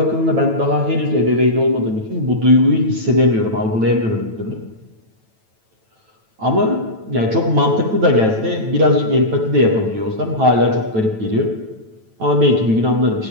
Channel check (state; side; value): late; left; 9.1 ms